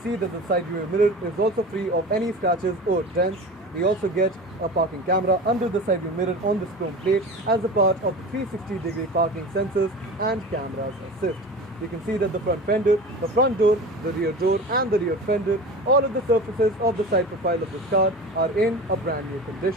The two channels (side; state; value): both; normal; correlation 0.33